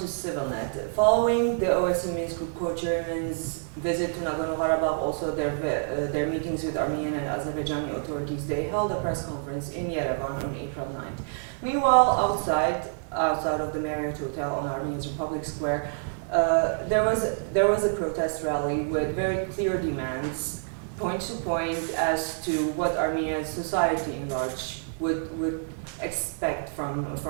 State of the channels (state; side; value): silent; left; 60 dB below the other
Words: ΣիվիլՆեթ. Following the OSCE Minsk Group co-chairman's visit to Nagorno-Karabakh, also their meetings with Armenian and Azerbaijani authorities, they held a press conference in Yerevan on April 9th. Meanwhile, outside of the Marriott Hotel on Armenia's Republic Square, there was a protest rally with very clear demands, point to point, as to what Armenia's society in large would expect from